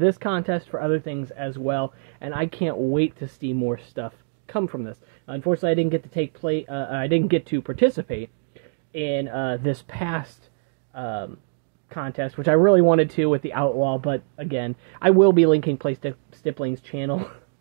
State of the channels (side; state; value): left; silent; digital silence